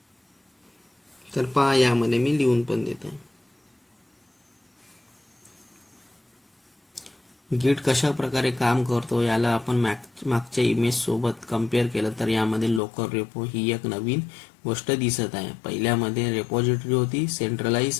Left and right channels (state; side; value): drops out; right; at 12.8 s